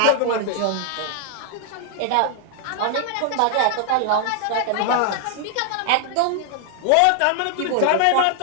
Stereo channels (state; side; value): different; both; correlation 0.00